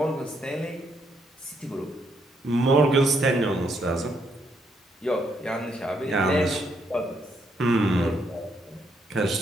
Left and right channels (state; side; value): normal; both; correlation 0.75